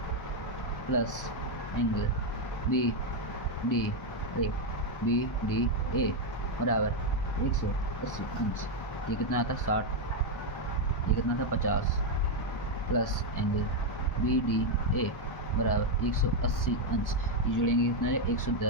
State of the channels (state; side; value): late; right; 1.2 ms